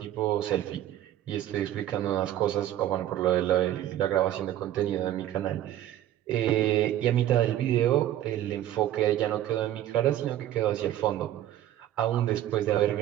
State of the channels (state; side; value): quieter; left; 12.6 dB